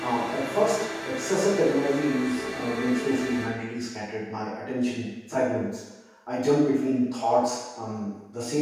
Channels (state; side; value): identical; both; correlation 1.00